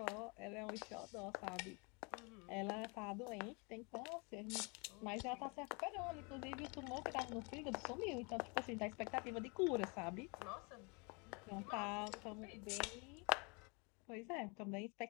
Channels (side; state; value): right; quieter; 31.5 dB